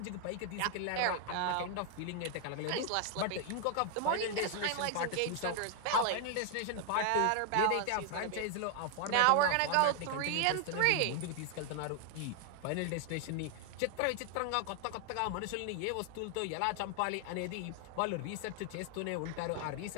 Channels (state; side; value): different; both; correlation 0.00